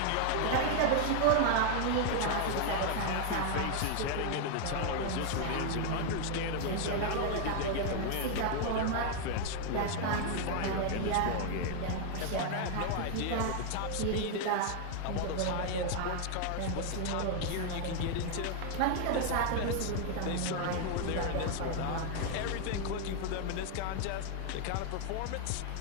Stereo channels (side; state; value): both; different; correlation 0.00